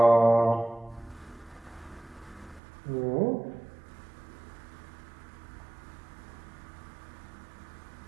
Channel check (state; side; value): drops out; left; at 2.6 s